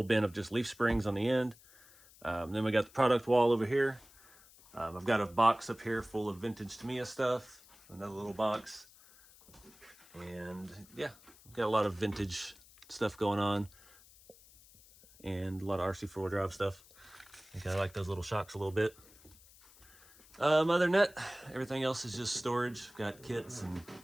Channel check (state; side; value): noise; left; hiss, 24 dB below the sound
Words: bin of just leaf springs on the end. Then we got the product wall over here. I've got a box up here full of vintage Tamiya stuff. Another little box. And yeah, got a lot of vintage stuff going on. And a lot of RC4 drive stuff. I think I like those little shocks a little bit. Other than that, everything else is just storage. Got kits and